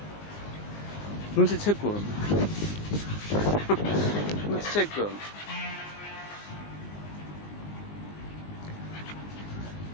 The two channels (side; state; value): right; late; 20 ms